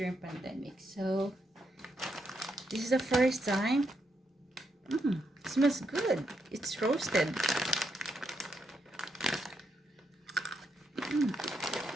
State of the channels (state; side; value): normal; both; correlation 0.80